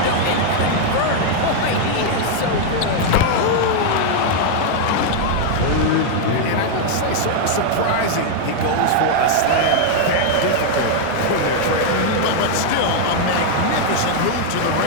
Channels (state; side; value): different; both; correlation 0.00